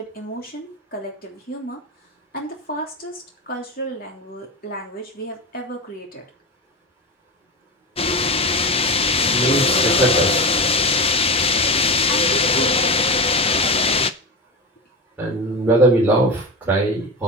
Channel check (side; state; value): both; normal; correlation 0.23